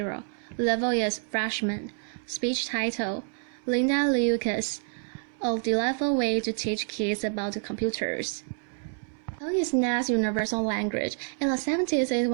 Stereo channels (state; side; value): silent; left; 59 dB below the other